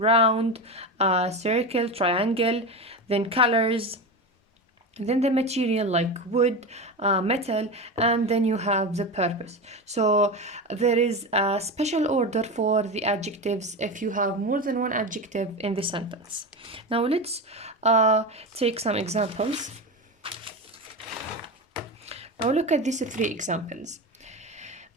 circle, triangle, then colors, then the material like wood, metal, and then you have the purpose. So there is a special order for the adjectives if you have more than one adjective in the sentence. Now let's take some examples. Now look at these three examples.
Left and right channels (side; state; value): both; normal; correlation 0.21